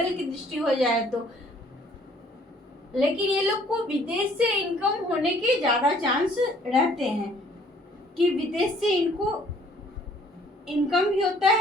की दृष्टि हो जाए तो। लेकिन ये लोग को विदेश से इनकम होने के ज़्यादा चांस रहते हैं कि विदेश से इनको इनकम भी होता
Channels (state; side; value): normal; both; correlation 0.59